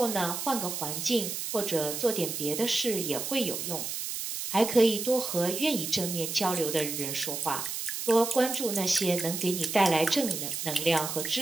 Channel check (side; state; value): right; noise; hiss, 4 dB below the sound